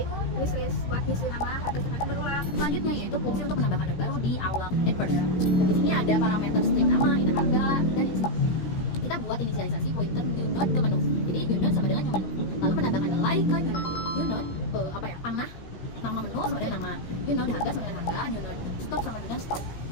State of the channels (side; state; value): right; late; 17 ms